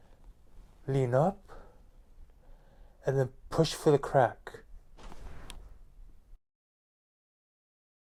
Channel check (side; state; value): both; identical; correlation 1.00